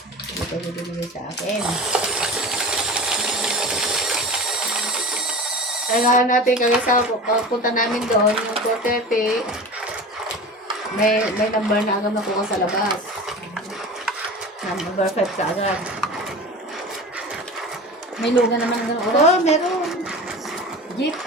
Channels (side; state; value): both; normal; correlation 0.34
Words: ko binigay sa akin. Kailangan natin kaya sa punta namin doon, yung 4:30, may number na agad nakuha sa labas. Number 5 ka agad. May luga naman ng oras. Oo, meron. Jeep.